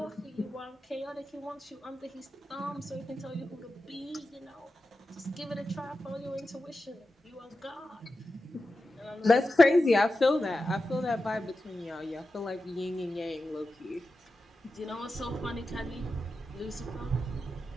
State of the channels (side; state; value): both; normal; correlation 0.92